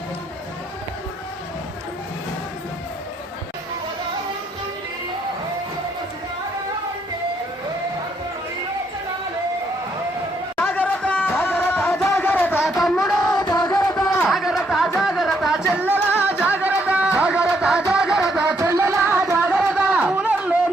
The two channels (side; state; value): both; normal; correlation 0.73